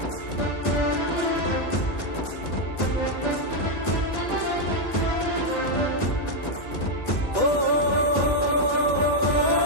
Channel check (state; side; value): late; right; 1.7 ms